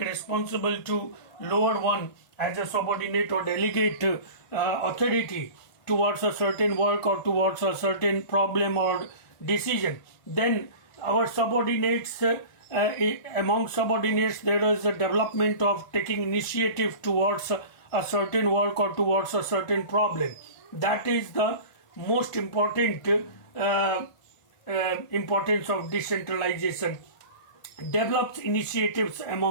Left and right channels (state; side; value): late; right; 1.5 ms